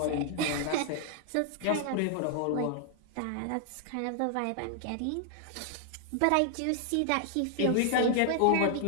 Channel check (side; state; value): both; different; correlation 0.00